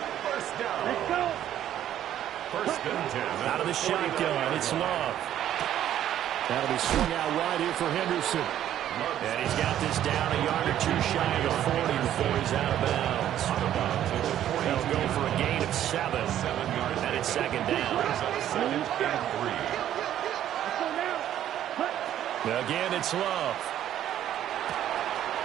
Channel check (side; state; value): left; quieter; 11.4 dB